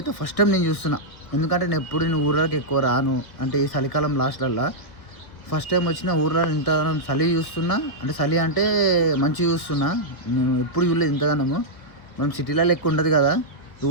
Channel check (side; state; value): right; late; 1.4 ms